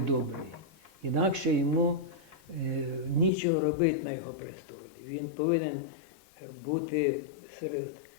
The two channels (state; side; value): drops out; right; at 3.3 s